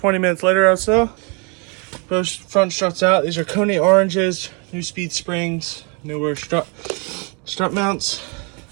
minutes later or so, both front struts out. These are Koni oranges, neuspeed springs, newer strut mounts.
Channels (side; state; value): left; quieter; 33.7 dB